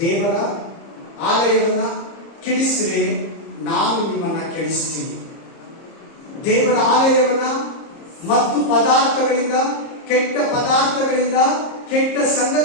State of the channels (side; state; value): right; late; 30 ms